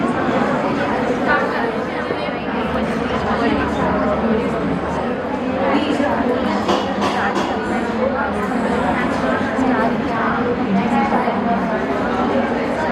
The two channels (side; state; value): both; identical; correlation 1.00